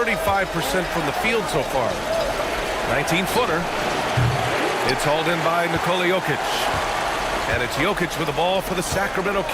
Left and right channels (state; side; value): identical; both; correlation 1.00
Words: from the field so far. 19-footer. It's hauled in by Nikola Jokic. And it's Jokic with the ball for the Sacramento